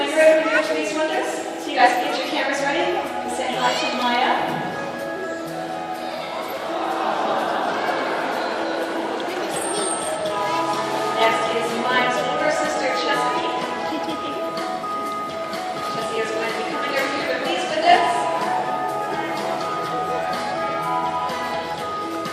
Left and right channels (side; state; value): both; identical; correlation 1.00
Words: right over here to these windows. So you guys can get your cameras ready. Say hi to Maya. Next is Maya's older sister, Chesapeake. Jessie is going to be coming over here to these windows.